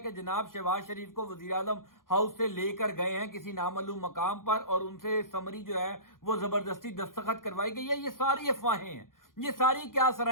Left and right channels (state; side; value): late; right; 0.90 ms